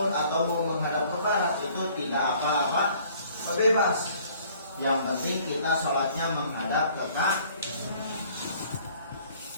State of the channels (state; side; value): inverted; both; correlation -0.57